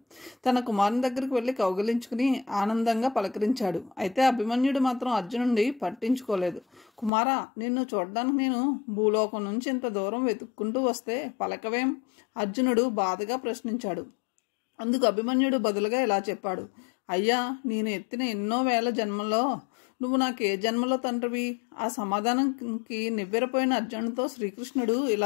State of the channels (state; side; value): drops out; right; at 7.1 s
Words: తన కుమారుని దగ్గరికి వెళ్ళి కౌగిలించుకుని ఆనందంగా పలకరించాడు. అయితే అభిమన్యుడు మాత్రం అర్జునుడిని పట్టించుకోలేదు. కుమారా, నిన్ను చూడడానికి నేను భూలోకం నుంచి ఇంత దూరం వెతుక్కుంటూ వస్తే పలకవేం? అర్జునుడు బాధగా ప్రశ్నించాడు. అందుకు అభిమన్యుడు బదులుగా ఇలా చెప్పాడు, అయ్యా, నేను ఎత్తిన ఎన్నో వేల జన్మల్లో నువ్వు నాకు ఏ జన్మలో తండ్రివి? ఆ సమాధానంకి నివ్వెరపోయిన అర్జునుడితో శ్రీకృష్ణుడు